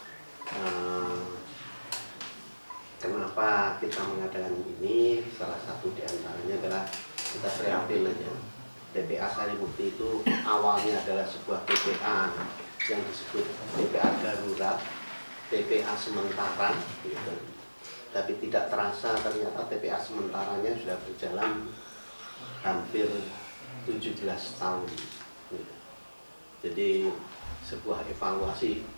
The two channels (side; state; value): both; inverted; correlation -1.00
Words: Kenapa kita mengadakan ini? Salah satu diantaranya adalah kita prihatin aja. TPA Sarimukti itu awalnya adalah sebuah TPA yang disebut TPA darurat, TPA sementara, gitu. Tapi tidak terasa ternyata TPA sementaranya sudah berjalan hampir 17 tahun. Gitu. Jadi sebuah evaluasi,